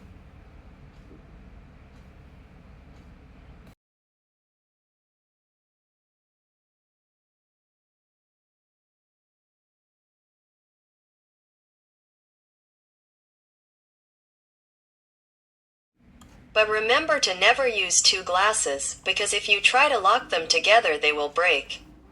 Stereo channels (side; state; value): both; identical; correlation 1.00